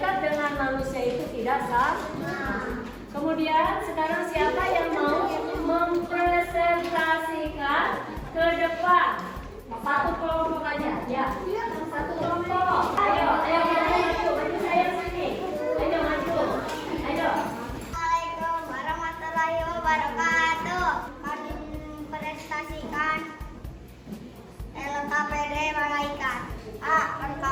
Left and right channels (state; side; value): identical; both; correlation 1.00